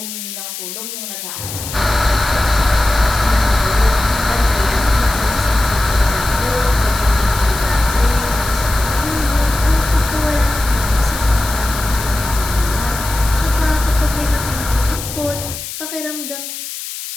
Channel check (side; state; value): left; noise; hiss, 9 dB below the sound